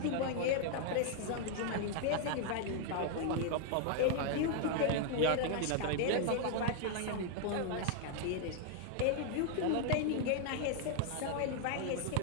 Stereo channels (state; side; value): different; both; correlation 0.00